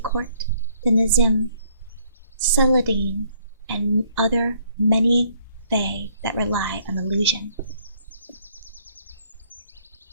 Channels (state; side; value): inverted; both; correlation -0.65